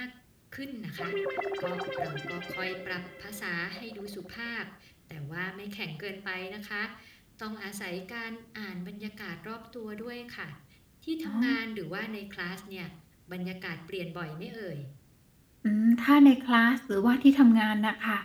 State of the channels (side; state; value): both; identical; correlation 1.00